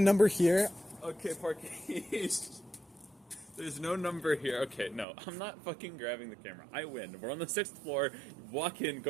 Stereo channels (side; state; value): left; drops out; at 5.1 s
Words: here? Okay, Parkies. There's no number here. Okay, no, I'm not fucking grabbing the camera. I win. We're on the 6th floor. Walk in,